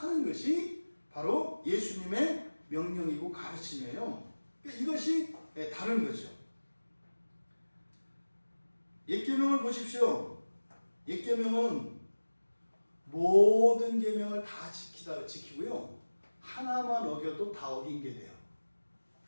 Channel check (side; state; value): both; inverted; correlation -1.00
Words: 하는 것이 바로 예수님의 명령이고 가르침이에요. 그러니까 이것이 다른 거죠. 옛 계명을 보십시오. 옛 계명은 모든 계명을 다 지키고요, 하나만 어겨도 다 어긴 게 돼요.